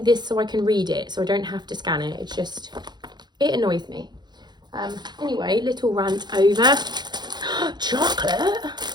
this so I can read it, so I don't have to scan it. It's just, it annoys me. Anyway, little rant over. Chocolate?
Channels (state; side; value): late; left; 0.21 ms